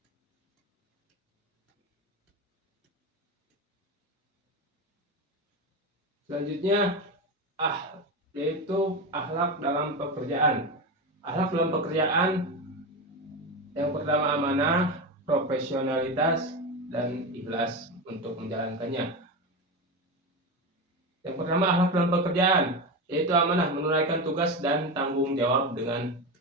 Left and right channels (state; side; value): normal; both; correlation 0.19